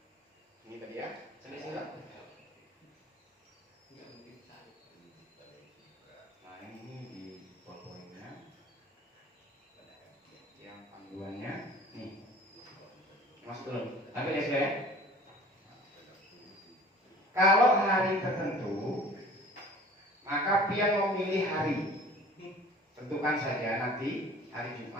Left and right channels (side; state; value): both; normal; correlation 0.46